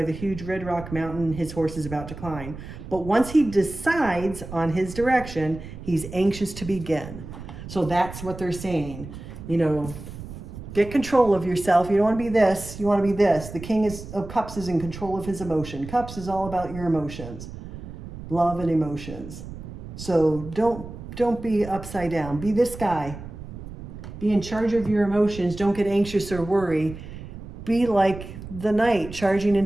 the huge red rock mountain his horse is about to climb. But once he decides on his direction, he's anxious to begin. So that's what they're saying. You know, get control of yourself. You don't want to be this. You want to be this. The King of Cups is in control of his emotion. Cups is all about your emotions. Love and emotions. So don't be upside down. Be this guy. Be in charge of your emotions. Don't get anxious or worry. Be like the knight charging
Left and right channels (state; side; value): noise; right; rumble, 12 dB below the sound